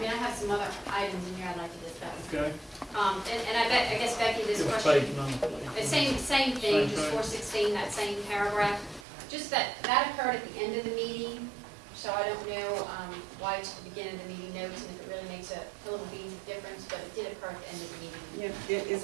I have some other items in here I'd like to discuss. okay. And I guess Becky, this Give us question, page number, please. same Same thing, just thing. 416, that same paragraph. Just that occurred at the end of the meeting, so I don't know why it's at the beginning of the meeting notes and if it really makes a little beans of difference, but it did occur at the end of the meeting. Yeah, is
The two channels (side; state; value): left; drops out; at 9.1 s